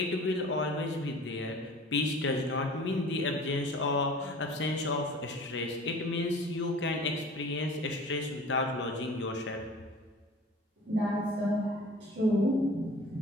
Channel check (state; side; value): normal; both; correlation 0.44